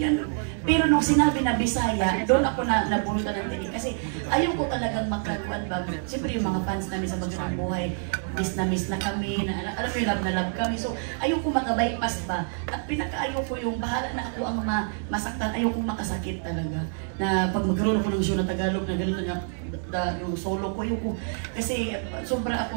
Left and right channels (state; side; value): silent; left; 60 dB below the other